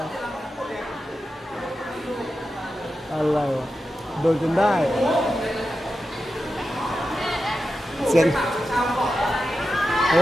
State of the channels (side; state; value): both; normal; correlation 0.91